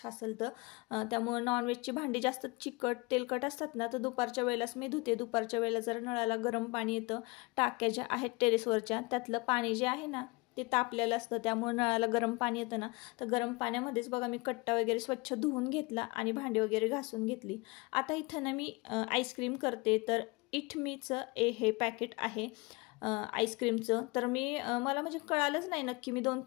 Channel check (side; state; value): right; quieter; 26.1 dB